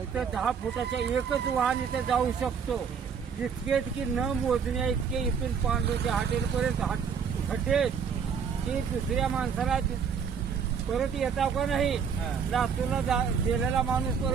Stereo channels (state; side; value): quieter; left; 6.7 dB